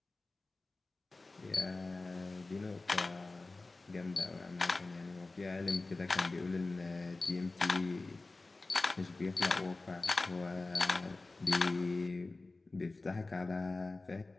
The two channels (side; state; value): right; quieter; 3.3 dB